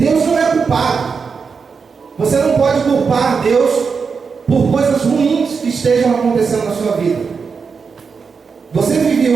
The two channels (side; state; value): left; quieter; 5.4 dB